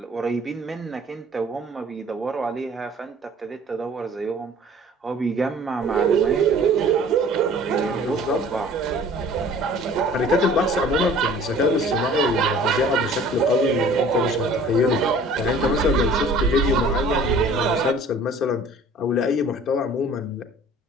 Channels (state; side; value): normal; both; correlation 0.49